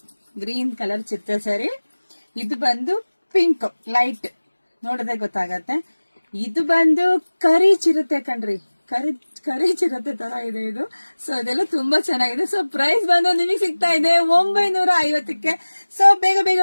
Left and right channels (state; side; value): inverted; both; correlation -1.00